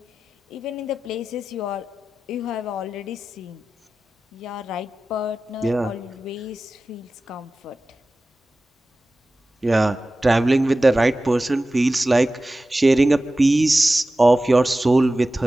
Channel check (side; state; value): both; normal; correlation 0.95